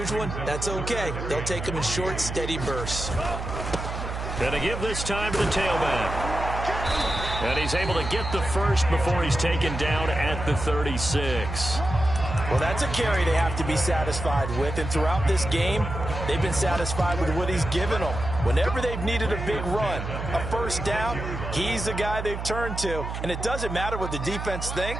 one, that's okay. They'll take them in short, steady bursts. Gonna give this time to the tailback. And he's able to get the first before he's taken down at the 36. Well, that's a carry they have to be satisfied with. And throughout this game, they've been satisfied with what he's given them. Whenever they've needed a big run, a first down, he's the guy they've turned to. And it doesn't matter what the defense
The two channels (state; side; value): noise; right; hum, 6 dB below the sound